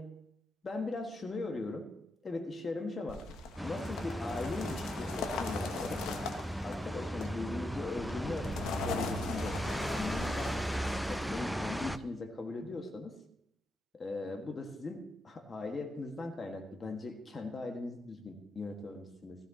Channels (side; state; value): both; normal; correlation 0.84